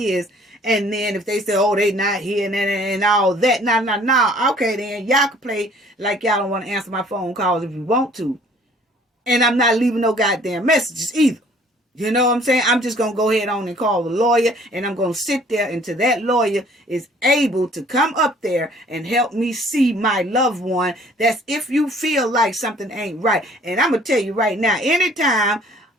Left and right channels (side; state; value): both; normal; correlation 0.55